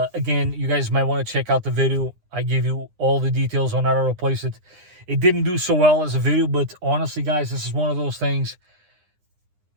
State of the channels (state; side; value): late; left; 9.8 ms